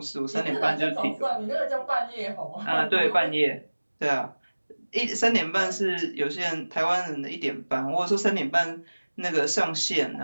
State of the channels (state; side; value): inverted; both; correlation -1.00